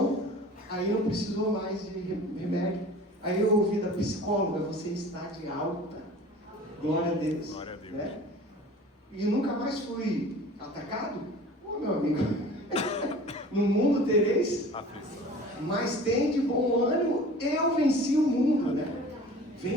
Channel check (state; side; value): normal; both; correlation 0.43